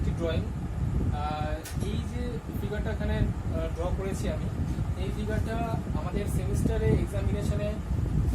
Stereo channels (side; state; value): both; identical; correlation 1.00